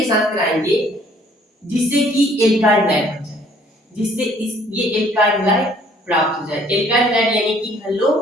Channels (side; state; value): both; normal; correlation 0.60